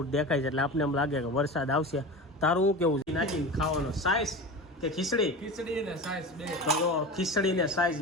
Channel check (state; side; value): normal; both; correlation 0.30